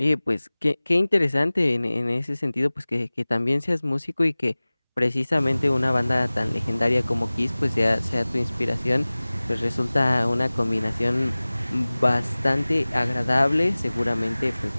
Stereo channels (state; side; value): inverted; both; correlation -0.99